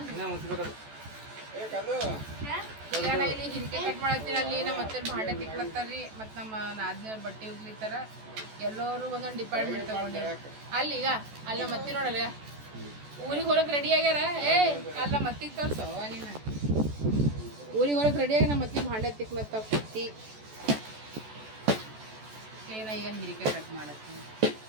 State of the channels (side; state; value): left; late; 14 ms